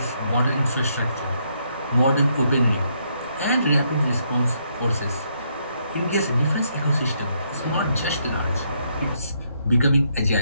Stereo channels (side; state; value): both; inverted; correlation -0.75